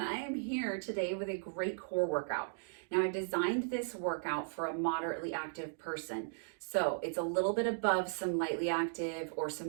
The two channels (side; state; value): left; silent; digital silence